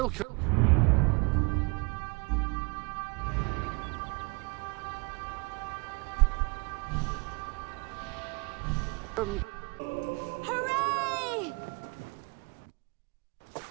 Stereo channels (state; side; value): quieter; left; 30.3 dB